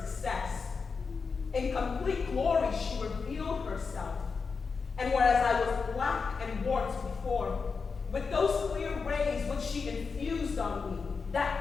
In complete glory she revealed herself, and whereas I was black and warped before, with those clear rays which she infused on me,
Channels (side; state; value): right; quieter; 5.0 dB